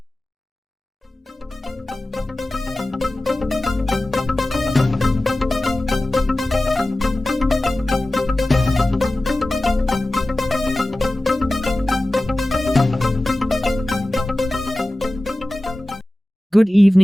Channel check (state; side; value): normal; both; correlation 0.96